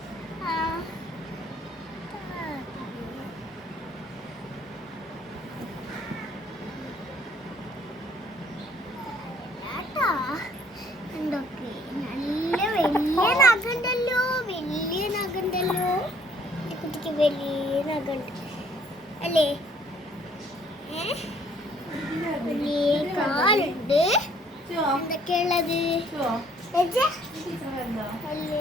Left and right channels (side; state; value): both; normal; correlation 0.61